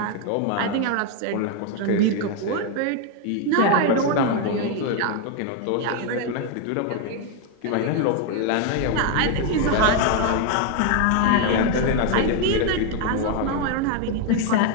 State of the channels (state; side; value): different; both; correlation 0.01